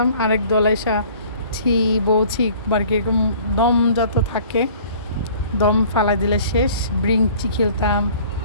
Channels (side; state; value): both; inverted; correlation -0.51